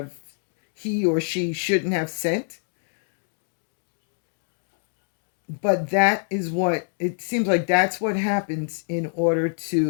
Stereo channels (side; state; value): right; silent; 61 dB below the other